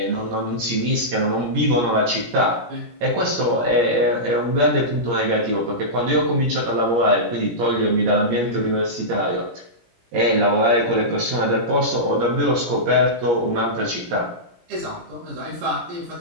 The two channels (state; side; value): late; left; 17 ms